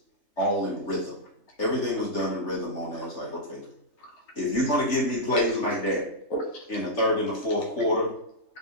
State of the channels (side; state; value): right; late; 3.4 ms